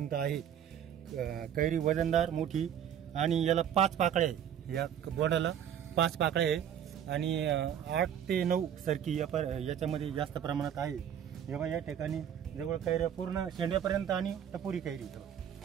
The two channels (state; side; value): quieter; left; 9.3 dB